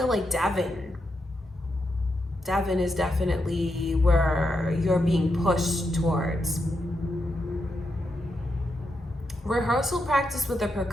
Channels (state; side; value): normal; both; correlation 0.84